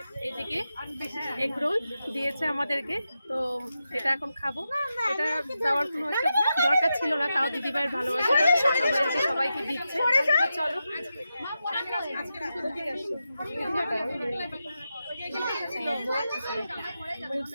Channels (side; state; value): both; inverted; correlation -0.89